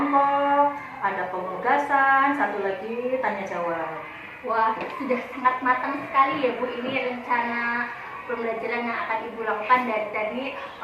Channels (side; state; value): both; identical; correlation 1.00